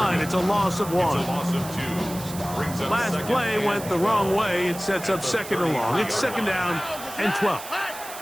It's a loss of 1. Last play went the wrong way. It sets up 2nd and long. It's 2nd down and 12.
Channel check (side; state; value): right; noise; hiss, 13 dB below the sound